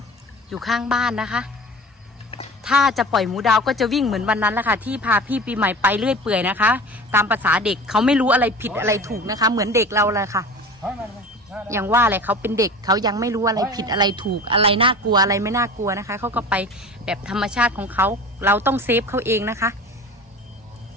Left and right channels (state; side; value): normal; both; correlation 0.37